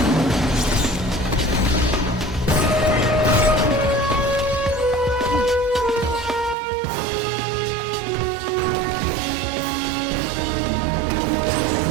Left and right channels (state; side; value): drops out; left; at 6.6 s